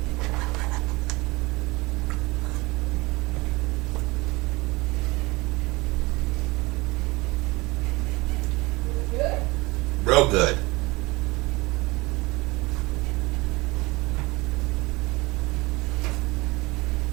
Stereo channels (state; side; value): quieter; left; 23.2 dB